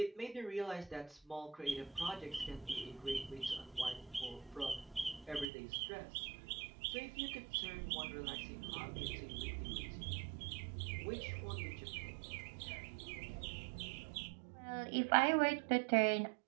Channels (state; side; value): drops out; left; at 5.5 s